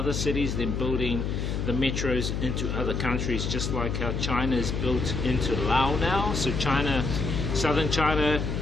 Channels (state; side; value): noise; left; hum, 2 dB below the sound